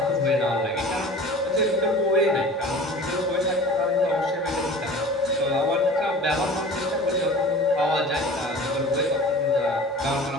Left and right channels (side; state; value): both; normal; correlation 0.40